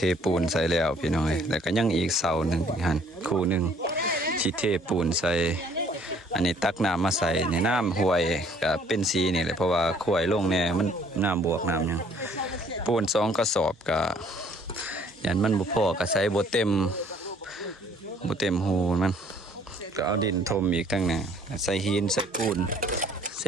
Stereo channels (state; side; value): normal; both; correlation 0.59